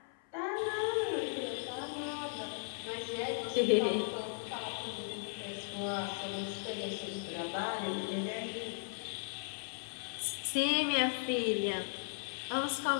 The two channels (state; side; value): silent; right; 53 dB below the other